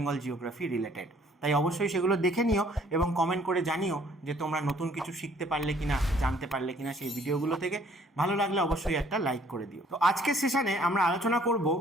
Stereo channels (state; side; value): normal; both; correlation 0.61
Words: জিওগ্রাফি রিলেটেড। তাই অবশ্যই সেগুলো দেখে নিও এবং কমেন্ট করে জানিও যে তোমরা নতুন কিছু শিখতে পারলে কিনা, জানতে পারলে কিনা সেই ভিডিওগুলো থেকে। ভালো লাগলে অবশ্যই একটা লাইক করে দিও। তো আজকের সেশনে আমরা আলোচনা করব